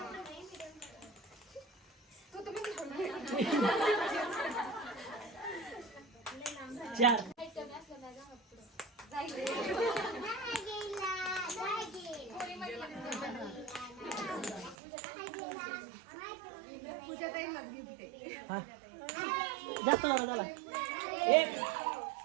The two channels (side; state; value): left; drops out; at 14.8 s